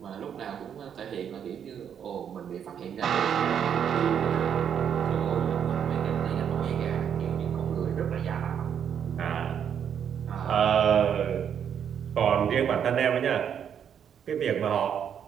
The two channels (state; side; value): quieter; left; 8.3 dB